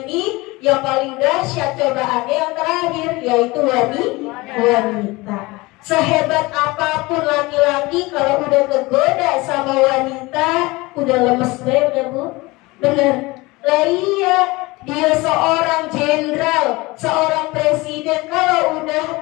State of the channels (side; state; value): right; quieter; 22.5 dB